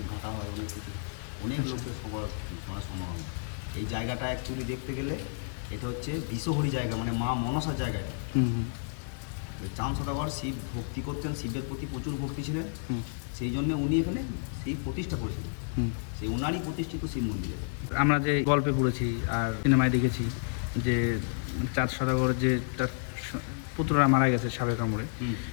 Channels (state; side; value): silent; right; digital silence